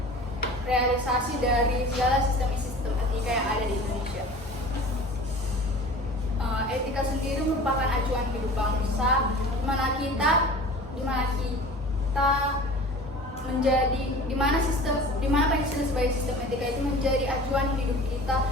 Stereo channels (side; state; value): both; normal; correlation 0.41